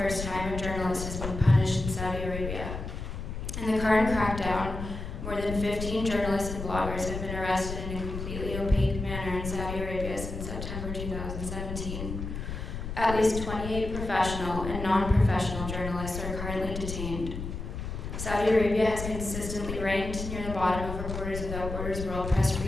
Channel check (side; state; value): left; noise; rumble, 6 dB below the sound